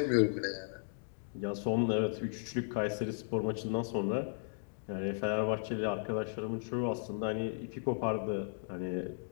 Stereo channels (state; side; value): silent; right; digital silence